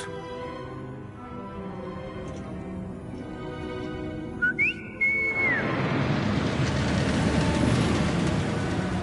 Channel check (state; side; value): identical; both; correlation 1.00